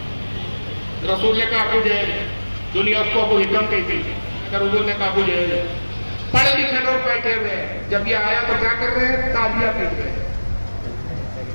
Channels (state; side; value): inverted; both; correlation -1.00